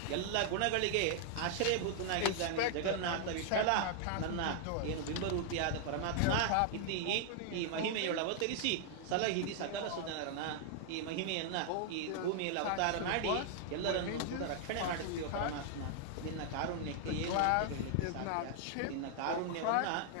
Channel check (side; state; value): both; different; correlation 0.00